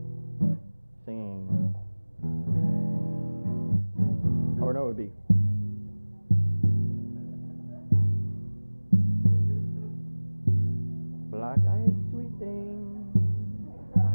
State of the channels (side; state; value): both; inverted; correlation -1.00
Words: Singing. Or no, it would be. Black-eyed sweet thing,